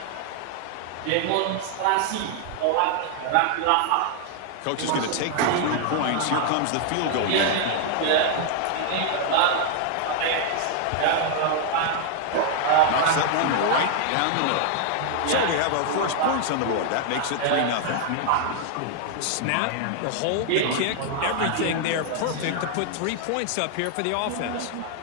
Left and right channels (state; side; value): different; both; correlation 0.00